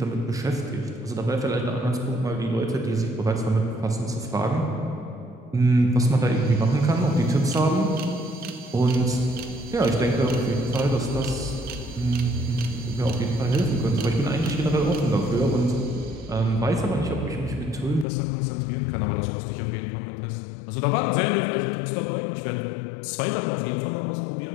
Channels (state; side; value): drops out; right; at 18.1 s